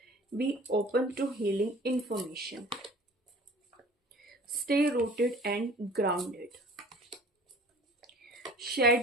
be open to healing information, stay rooted and grounded,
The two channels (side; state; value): both; normal; correlation 0.46